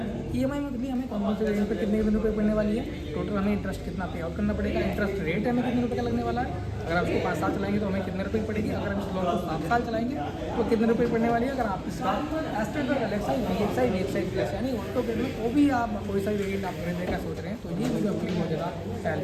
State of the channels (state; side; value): identical; both; correlation 1.00